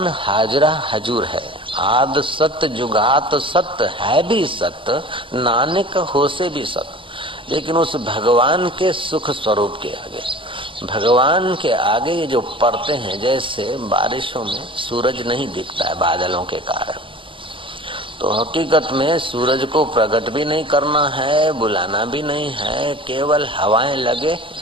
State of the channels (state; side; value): late; left; 0.25 ms